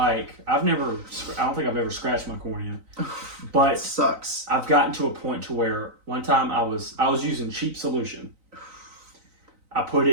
I don't think I've ever scratched my cornea. But it sucks. I've gotten to a point to where one time I was using cheap solution. I put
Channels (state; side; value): late; left; 3.9 ms